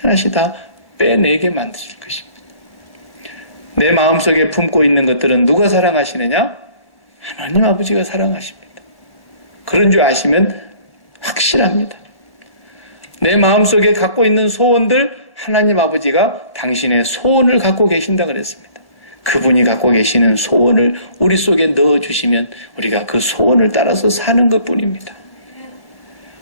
하나씩 다 빼내게 만드실 것입니다. 내 마음속에 품고 있는 것들은 누가 사랑하시느냐? 하나님 아버지가 사랑하십니다. 그런 줄 아시면 확실합니다. 내 마음속에 갖고 있는 소원들, 하나님 아버지가 당신의 소원을 갖고 계신다 그랬습니다. 그분이 갖고 계시는 소원을 우리 속에 넣어주시면 우리가 그 소원을 따라서 사는 것뿐입니다.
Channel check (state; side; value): late; right; 1.0 ms